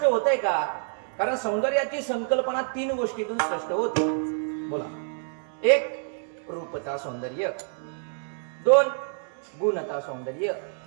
होतंय का? कारण सौंदर्याची संकल्पना 3 गोष्टीतून स्पष्ट होते. बोला. 1 रूपता सौंदर्य, 2 गुणता सौंदर्य,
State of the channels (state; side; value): silent; left; digital silence